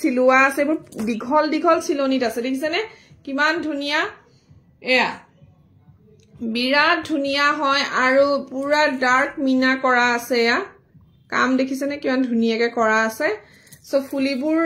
চিলোৱা আছে এইবোৰ দীঘল দীঘল চিলনিত আছে দেখিছেনে কিমান ধুনিয়া এয়া বিৰাট ধুনিয়া হয় আৰু পুৰা ডাৰ্ক মিনা কৰা আছে এয়া কাম দেখিছেনে কিমান ধুনিয়াকে কৰা আছে সো ফুলিবোৰ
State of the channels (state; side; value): identical; both; correlation 1.00